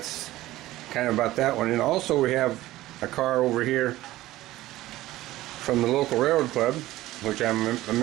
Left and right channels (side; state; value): left; quieter; 16.3 dB